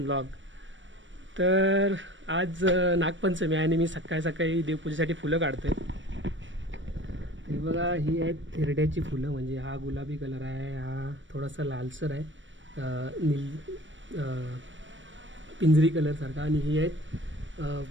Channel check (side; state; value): left; late; 0.55 ms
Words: ब्लॉग. तर आज नागपंचमी आहे आणि मी सकाळी सकाळी देवपूजेसाठी फुलं काढतो आहे. हे बघा, ही आहेत थिरड्याची फुलं. म्हणजे हा गुलाबी कलर आहे, हा थोडासा लालसर आहे, पिंजरी कलरसारखा. आणि ही आहेत